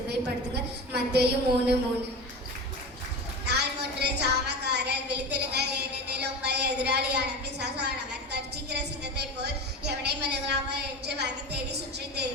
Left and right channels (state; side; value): normal; both; correlation 0.28